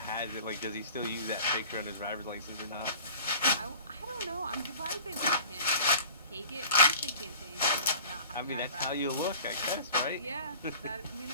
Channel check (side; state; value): both; inverted; correlation -0.44